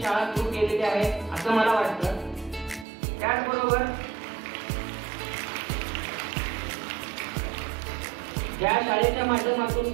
शाळा सुरू केलेली आहे असं मला वाटतं. त्याचबरोबर या शाळेच्या माध्यमातून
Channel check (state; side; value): drops out; left; at 2.9 s